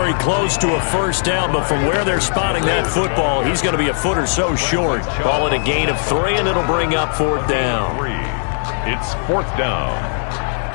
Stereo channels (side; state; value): right; silent; 67 dB below the other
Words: close to a first down, but from where they're spotting that football, he's going to be a foot or so short. Call it a gain of 3, and it'll bring up 4th down. It's 4th down.